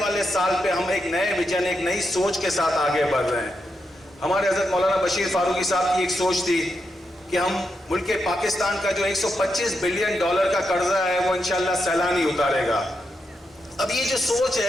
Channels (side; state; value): both; normal; correlation 0.85